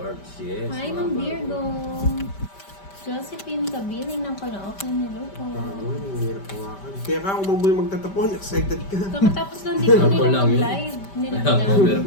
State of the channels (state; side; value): late; right; 5.1 ms